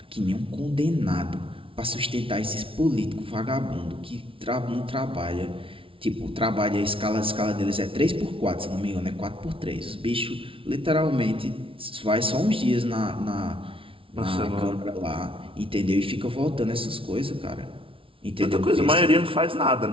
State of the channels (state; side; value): late; left; 0.26 ms